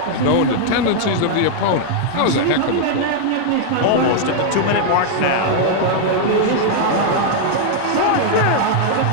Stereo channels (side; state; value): both; different; correlation 0.00